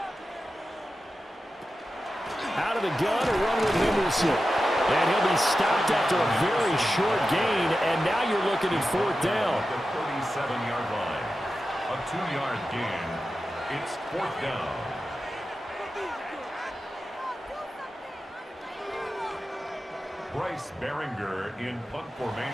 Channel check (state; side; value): normal; both; correlation 0.92